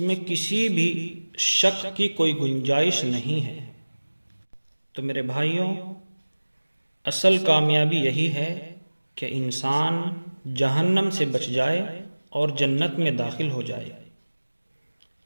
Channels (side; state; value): both; inverted; correlation -1.00